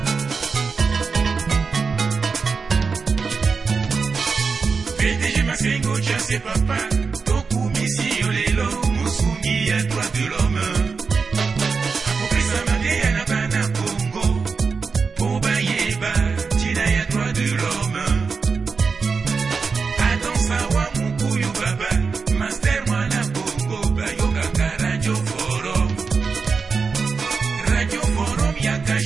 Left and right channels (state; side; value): quieter; left; 5.0 dB